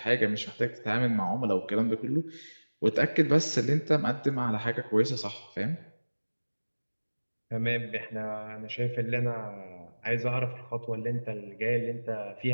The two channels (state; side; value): inverted; both; correlation -1.00